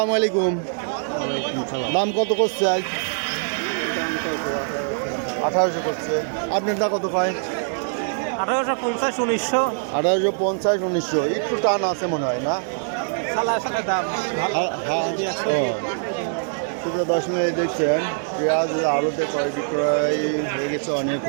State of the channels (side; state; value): left; silent; 63 dB below the other